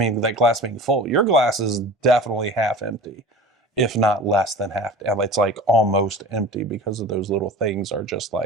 that glass being full. Your glass is definitely half empty, if not less than half. It's like almost empty because of those little things are just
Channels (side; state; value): both; normal; correlation 0.38